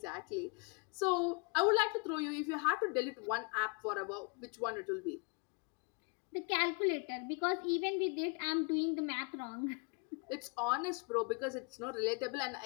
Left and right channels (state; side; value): quieter; right; 34.1 dB